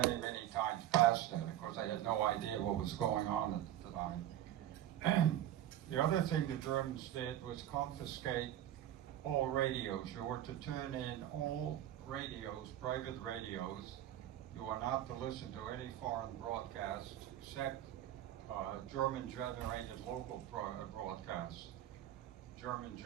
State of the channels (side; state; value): left; quieter; 12.2 dB